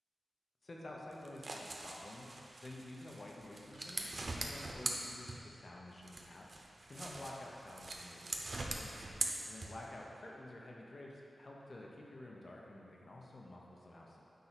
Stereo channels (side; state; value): both; normal; correlation 0.94